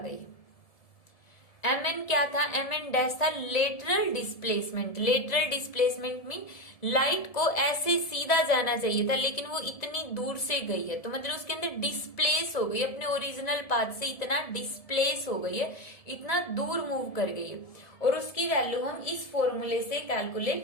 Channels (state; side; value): late; right; 1.7 ms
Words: एम एन क्या था, एम एन डैश था lateral displacement. Lateral displacement mean light को ऐसे सीधा जाना चाहिए था लेकिन वो इतनी दूर से गई है, तो मतलब उसके अंदर डिस्प्लेस हो गई, अपने ओरिजिनल पाथ से इतना डिस्प्लेस हो गई है, इतना दूर मूव कर गई है, और उसकी वैल्यू हम इस फॉर्मूले से